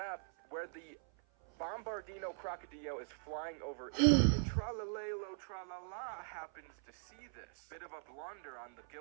where the Bombardino Crocodile is flying over Italy, and Tralalelo Tralala happens to see this. Bit of a blunder on the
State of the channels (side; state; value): left; silent; 51 dB below the other